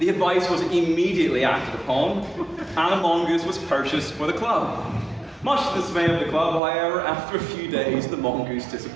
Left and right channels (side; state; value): left; drops out; at 6.6 s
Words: advice was immediately acted upon, and a mongoose was purchased for the club. Much to the dismay of the club, however, after a few days, the mongoose